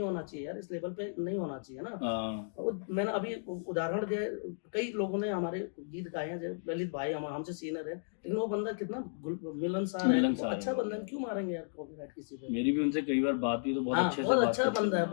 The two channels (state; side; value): silent; right; digital silence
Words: होना चाहिए यार, इस लेवल पे नहीं होना चाहिए ना। और मैंने अभी उदाहरण दिया, कई लोगों ने हमारे गीत गाए हैं, ललित भाई हमसे सीनियर है, लेकिन वो बंदा कितना मिलनसार है, अच्छा बंदा है, क्यों मारेंगे यार कॉपीराइट किसी पे? मेरी भी उनसे कई बार बात हुई तो बहुत अच्छे से बहुत अच्छा बंदा है,